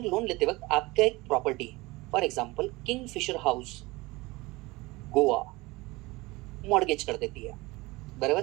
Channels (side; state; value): left; quieter; 22.1 dB